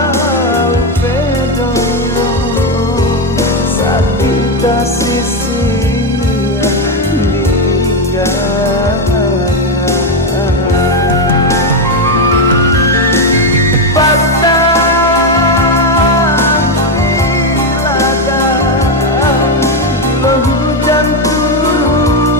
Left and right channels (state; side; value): normal; both; correlation 0.08